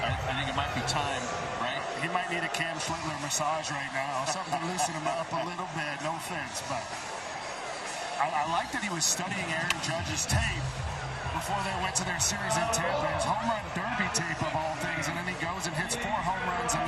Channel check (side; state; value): right; noise; rumble, 24 dB below the sound